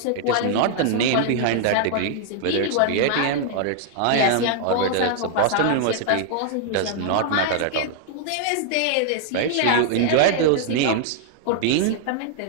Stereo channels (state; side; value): different; both; correlation 0.00